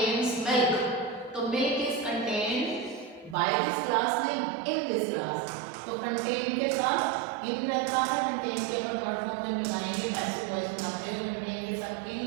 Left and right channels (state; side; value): drops out; left; at 3.4 s